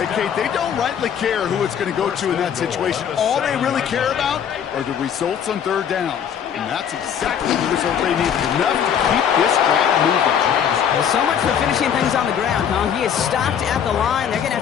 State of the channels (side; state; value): right; quieter; 8.4 dB